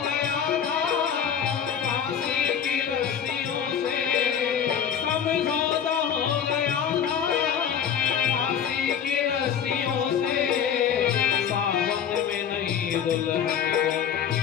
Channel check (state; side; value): quieter; right; 8.1 dB